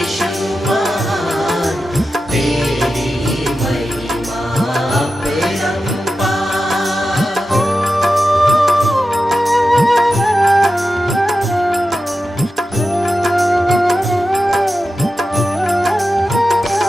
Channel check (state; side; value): normal; both; correlation 0.92